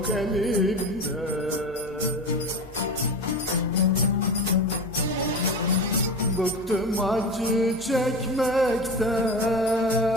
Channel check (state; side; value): normal; both; correlation 0.28